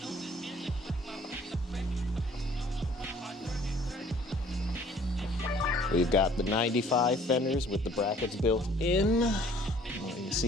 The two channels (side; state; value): both; normal; correlation 0.56